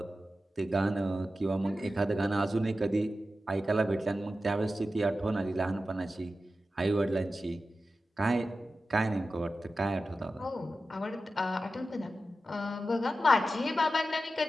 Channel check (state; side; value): normal; both; correlation 0.93